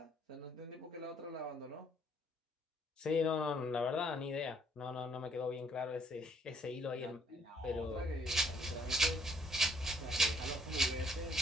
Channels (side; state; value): both; normal; correlation 0.65